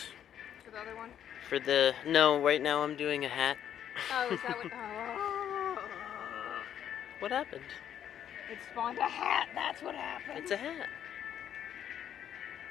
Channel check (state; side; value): quieter; right; 9.8 dB